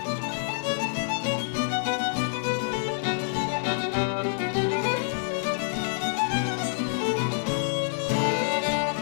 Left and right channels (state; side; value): silent; right; digital silence